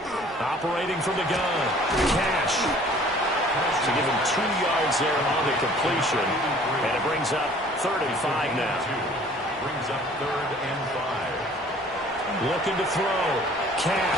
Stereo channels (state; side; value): normal; both; correlation 0.52